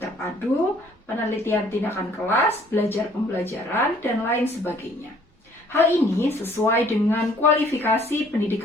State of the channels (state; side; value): normal; both; correlation 0.59